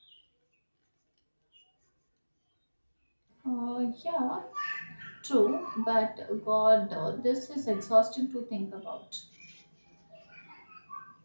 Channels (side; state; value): both; inverted; correlation -1.00